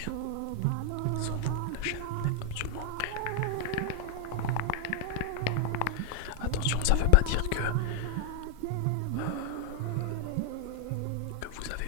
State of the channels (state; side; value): different; both; correlation 0.00